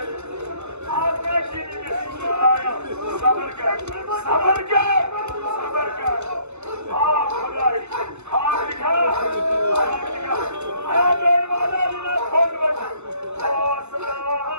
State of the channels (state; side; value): late; left; 0.82 ms